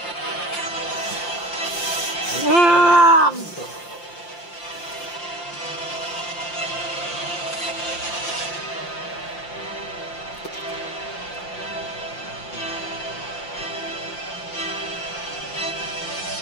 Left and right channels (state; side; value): late; right; 5.8 ms